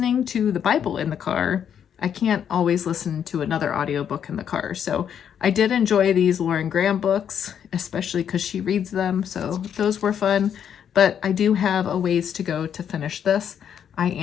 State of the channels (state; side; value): quieter; right; 8.6 dB